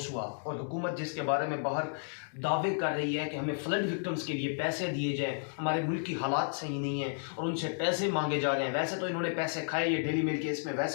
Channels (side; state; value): right; silent; digital silence